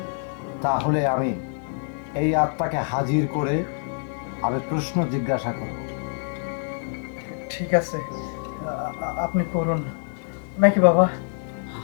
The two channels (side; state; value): right; silent; digital silence